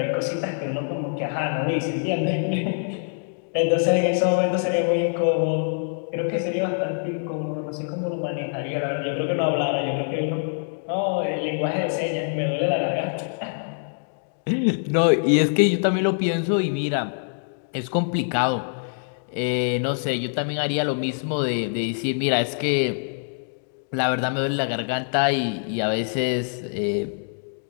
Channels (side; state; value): right; silent; digital silence